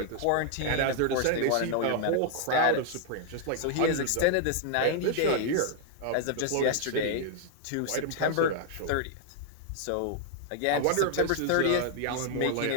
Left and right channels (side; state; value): both; different; correlation -0.01